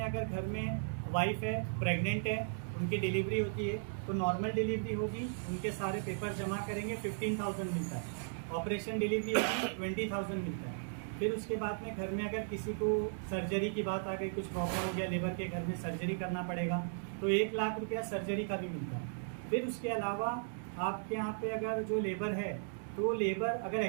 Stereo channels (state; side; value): silent; left; digital silence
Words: अगर घर में वाइफ है, प्रेग्नेंट है, उनकी डिलीवरी होती है तो नॉर्मल डिलीवरी होगी, उनके सारे पेपर जमा करेंगे, 15,000 मिलता है। ऑपरेशन डिलीवरी होगी 20,000 मिलता है। फिर उसके बाद में घर में अगर किसी को सर्जरी की बात आ गई, कुछ प्रॉब्लम हो गया, लेबर के घर में सर्जरी करना पड़ेगा तो 1 लाख रुपया सर्जरी का भी मिलता है। फिर उसके अलावा आपके यहाँ पे अगर जो लेबर है, तो लेबर अगर